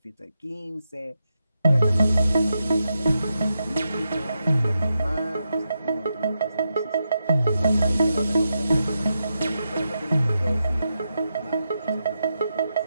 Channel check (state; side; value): inverted; both; correlation -0.86